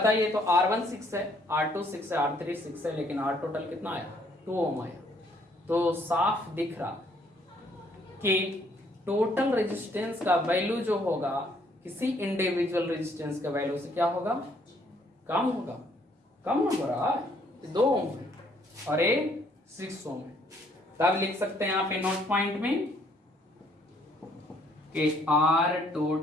तो R1 6 है, R2 6 है, R3 6 है, लेकिन R टोटल कितना आया? 2 ओम आया। तो साफ दिख रहा कि टोटल रेजिस्टेंस का वैल्यू जो होगा किसी इंडिविजुअल रेजिस्टेंस के वैल्यू से क्या होगा? कम होगा। कम हो रहा है, 2 ओम है और ये 6 ओम है। तब लिख सकते हैं यहाँ पे नोट पॉइंट में कि R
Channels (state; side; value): normal; both; correlation 0.65